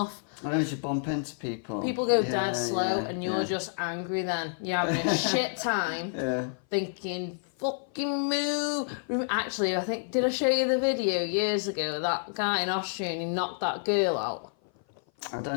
I know you bump into people. People go dead slow, and you're just angry. Then you're having a shit time, thinking fucking move. Actually, I think did I show you the video years ago? That guy in Austria, and he knocked that girl out. I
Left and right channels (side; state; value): right; silent; 56 dB below the other